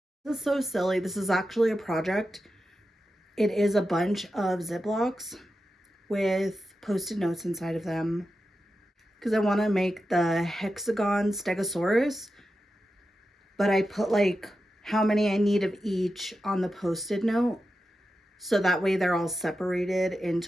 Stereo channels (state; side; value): normal; both; correlation 0.90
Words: This is so silly. This is actually a project It is a bunch of Ziplocs with Post-it notes inside of them because I want to make the hexagon stegosaurus, but I put like how many I need of each on the Post-it note, so that way they're all separated